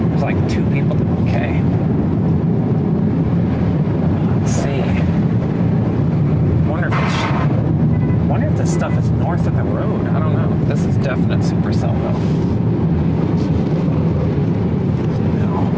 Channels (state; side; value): identical; both; correlation 1.00